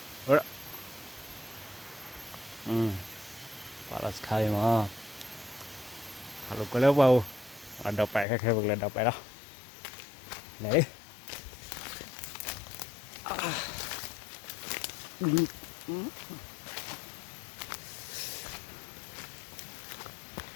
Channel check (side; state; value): right; drops out; at 8.2 s